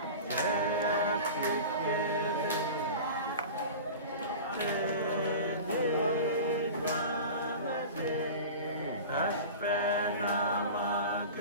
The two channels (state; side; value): inverted; both; correlation -0.34